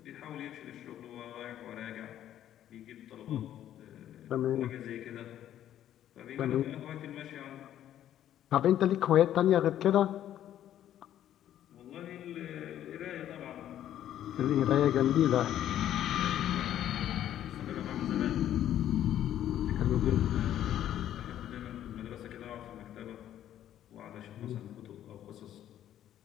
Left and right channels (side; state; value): right; quieter; 11.5 dB